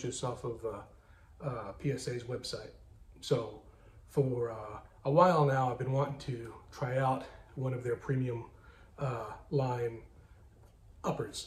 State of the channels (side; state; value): both; identical; correlation 1.00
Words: off of PSA's website. So for a while now, I've been wanting to try out one of their premium line